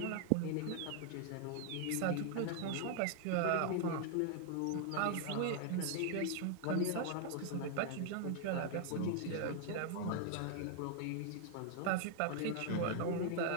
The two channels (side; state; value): both; different; correlation 0.00